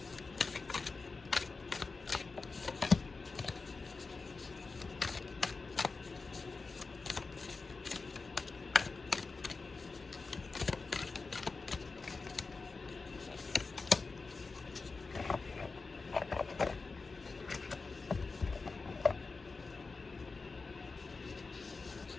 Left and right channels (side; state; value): right; quieter; 4.1 dB